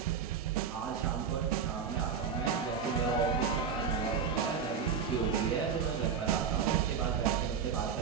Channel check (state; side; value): quieter; left; 6.6 dB